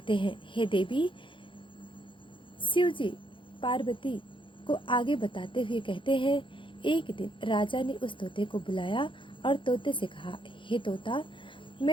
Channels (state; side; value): late; right; 0.24 ms